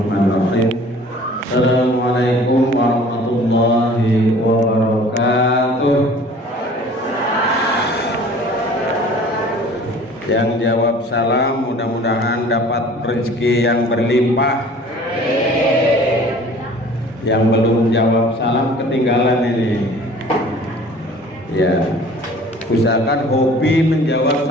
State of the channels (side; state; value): both; normal; correlation 0.48